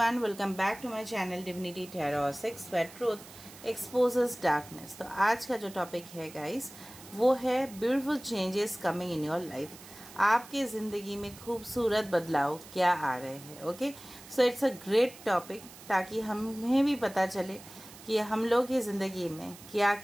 welcome back to my channel Divinity Tarot 6 where truth exposes darkness। तो आज का जो topic है गाइस वो है beautiful changes coming in your life. आपके ज़िंदगी में खूबसूरत बदलाव क्या आ रहे हैं। Okay, so it's a great topic ताकि हमें भी पता चले कि हम लोग की ज़िंदगी में क्या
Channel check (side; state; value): right; noise; hiss, 18 dB below the sound